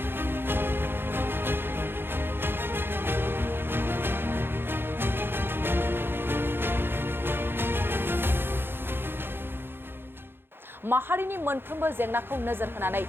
माहारिनि मोनफ्रोमबो जेंनाखौ नोजोर होनानै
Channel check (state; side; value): late; left; 0.10 ms